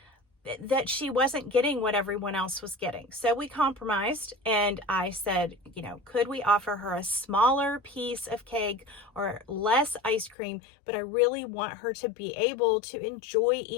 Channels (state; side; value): drops out; right; at 10.4 s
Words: that she wasn't getting what everyone else was getting. So we compromised, and I said, could we offer her a smaller piece of cake or less ice cream? But I really want her to be able to enjoy